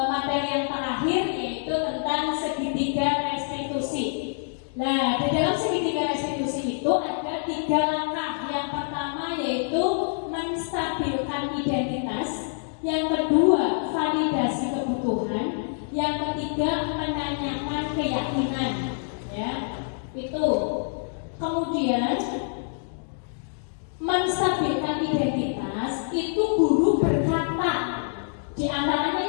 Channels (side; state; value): right; silent; digital silence